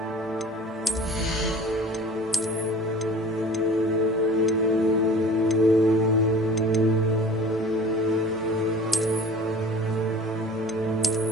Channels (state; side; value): normal; both; correlation 0.43